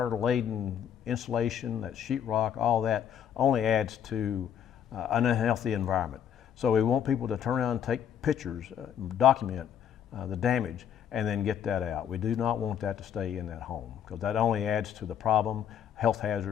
insulation, that sheetrock, all that only adds to an unhealthy environment. So we want people to turn around and take pictures, document the damage, and then get that out. We do not want that to stay in that home because that only adds to the problem, health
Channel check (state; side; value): quieter; right; 9.0 dB